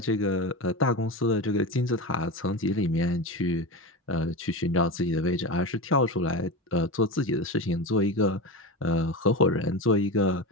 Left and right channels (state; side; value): normal; both; correlation 0.22